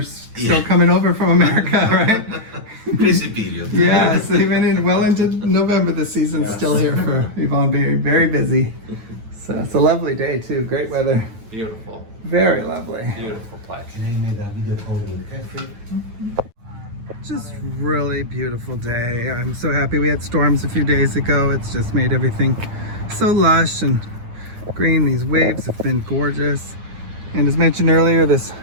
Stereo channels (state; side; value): late; left; 9.1 ms